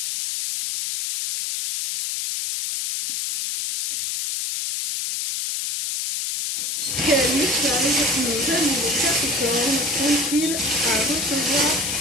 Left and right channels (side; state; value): left; noise; hiss, 2 dB below the sound